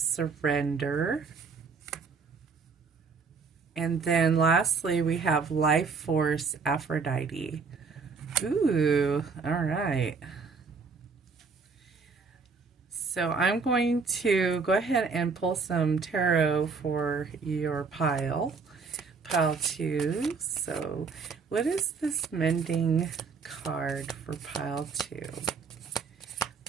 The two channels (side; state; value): left; quieter; 5.0 dB